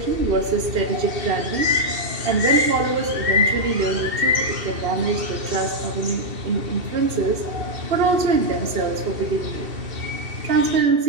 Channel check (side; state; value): left; late; 2.7 ms